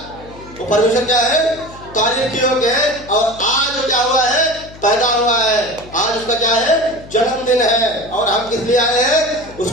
वो परमेश्वर क्या है? तारीफ के योग्य है। और आज वो क्या हुआ है? पैदा हुआ है। आज उसका क्या है? जन्मदिन है। और हम किस लिए आए हैं?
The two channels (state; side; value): noise; left; hum, 19 dB below the sound